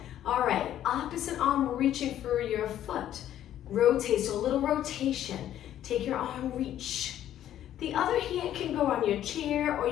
All right, opposite arm reaching for your foot. Rotate, so a little rotation. Take your arm, reach. The other hand can go on your chair, or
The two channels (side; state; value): right; quieter; 11.6 dB